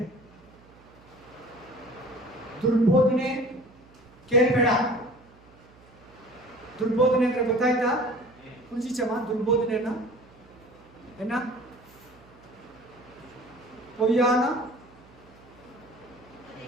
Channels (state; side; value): noise; right; hum, 25 dB below the sound